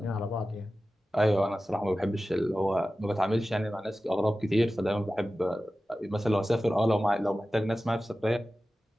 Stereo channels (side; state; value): both; normal; correlation 0.95